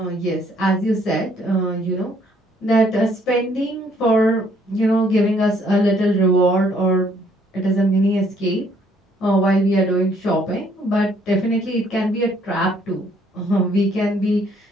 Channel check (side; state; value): both; normal; correlation 0.65